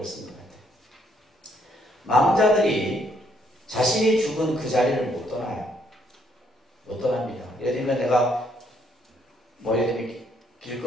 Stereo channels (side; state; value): both; normal; correlation 0.70